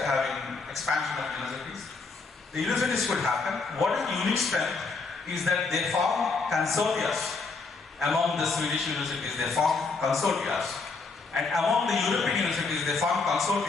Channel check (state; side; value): quieter; right; 4.2 dB